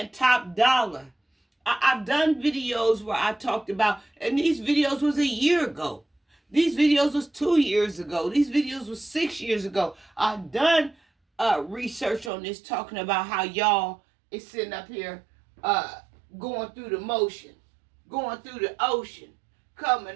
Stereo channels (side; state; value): left; drops out; at 12.3 s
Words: top dollar. I've done videos where I talked about, and these videos was a year ago. These videos was 2 years ago. These videos was 6 years ago. I've done research on this, talking about how y'all is sitting up here going through the motion, going through the ocean, coming